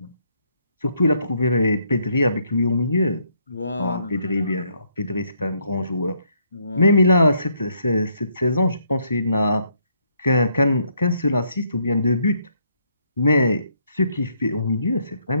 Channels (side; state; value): both; inverted; correlation -0.72